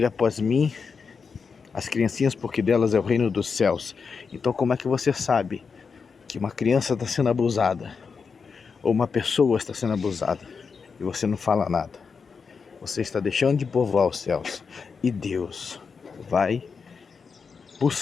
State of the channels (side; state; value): right; quieter; 5.5 dB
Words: após mim as criancinhas, porque delas é o reino dos céus. Então como é que você sabe que uma criança está sendo abusada ou uma pessoa está sendo abusada e você não fala nada? Você está deixando de povoar os céus, e Deus vai